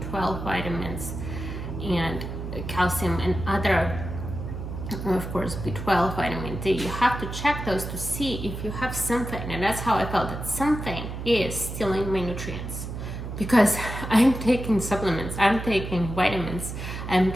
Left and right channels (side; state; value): right; noise; hum, 7 dB below the sound